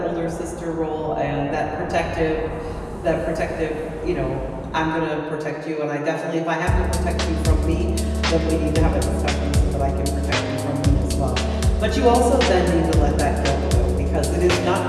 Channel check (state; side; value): identical; both; correlation 1.00